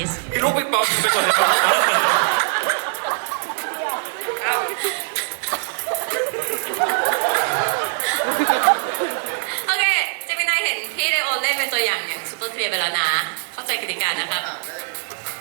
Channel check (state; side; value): silent; left; digital silence